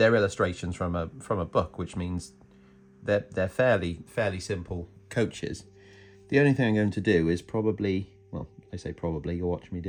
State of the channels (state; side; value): identical; both; correlation 1.00